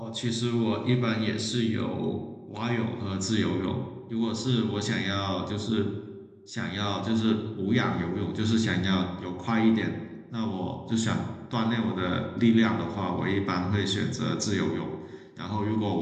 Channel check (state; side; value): identical; both; correlation 1.00